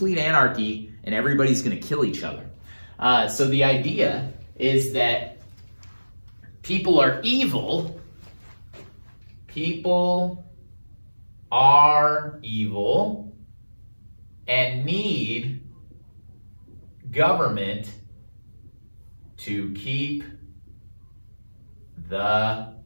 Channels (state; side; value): inverted; both; correlation -1.00